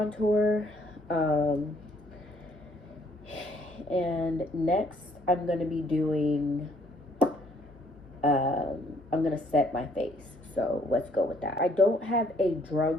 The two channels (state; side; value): normal; both; correlation 0.64